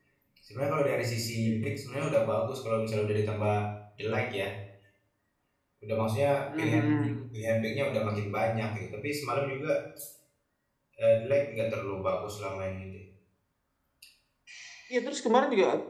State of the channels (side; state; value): both; identical; correlation 1.00